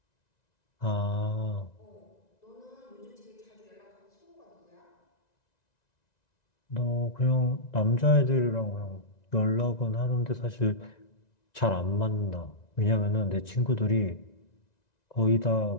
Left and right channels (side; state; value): right; late; 1.9 ms